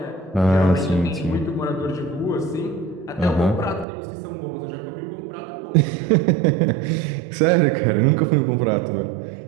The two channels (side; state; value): left; drops out; at 3.9 s